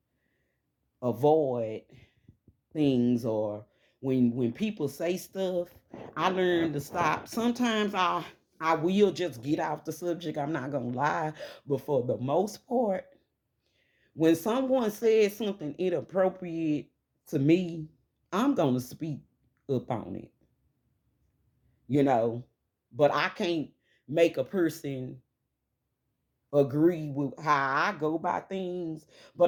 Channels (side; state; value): both; identical; correlation 1.00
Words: avoid things, or when people say stuff, I learn to stop. Sometimes I will just get off the subject, I'm not gonna lie, but for the most part, when someone says something inappropriate to me, I'm gonna speak up on it, you know. But I can't make a person agree with how I go about things,